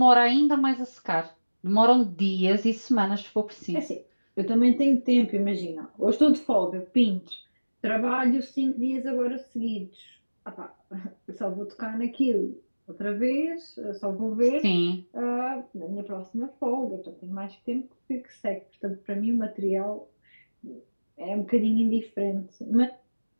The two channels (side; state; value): both; inverted; correlation -1.00